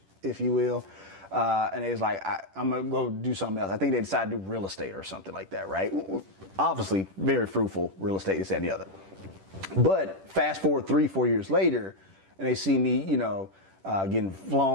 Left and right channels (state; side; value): late; left; 10 ms